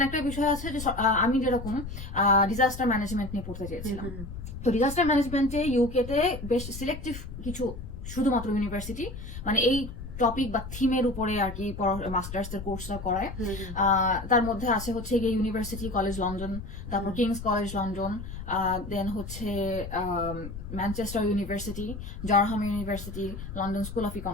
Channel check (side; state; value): left; noise; rumble, 10 dB below the sound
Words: একটা বিষয় আছে যে আমি যেরকম ডিজাস্টার ম্যানেজমেন্ট নিয়ে পড়তে চেয়েছিলাম, তো ডিজাস্টার ম্যানেজমেন্টে ইউকেতে বেশ সিলেক্টিভ কিছু শুধুমাত্র ইউনিভার্সিটি মানে এই টপিক বা থিমের উপরে আর কি মাস্টার্স এর কোর্সটা করায়। তার মধ্যে আছে হচ্ছে গিয়ে ইউনিভার্সিটি কলেজ লন্ডন, তারপর কিংস কলেজ লন্ডন, দেন হচ্ছে Manchester university, Durham university, London school of